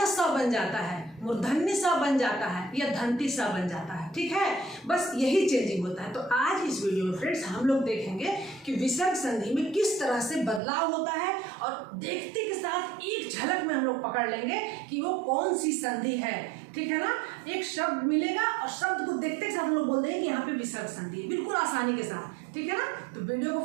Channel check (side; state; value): left; drops out; at 10.6 s